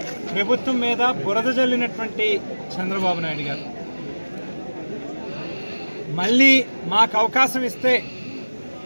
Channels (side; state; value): both; inverted; correlation -1.00